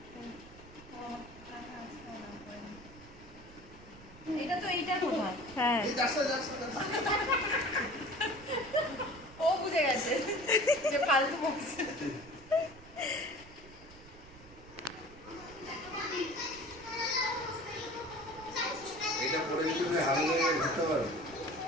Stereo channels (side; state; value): right; noise; rumble, 20 dB below the sound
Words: এটা তো এইটা কোথায়? হ্যাঁ, ও বুঝে গেছে যে ফালতু বকছে। এটা পরে যদি তুমি হারিয়ে ঘুরতে পারো।